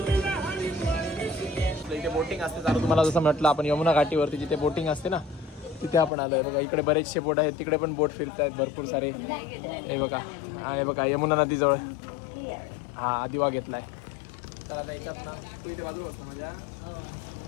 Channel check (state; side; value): drops out; right; at 6.1 s